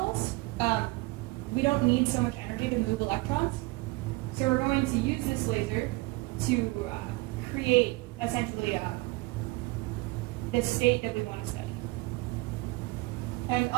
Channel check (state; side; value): quieter; left; 23.0 dB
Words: we don't need so much energy to move electrons. So we're going to use this laser to create essentially the state that we want to study. And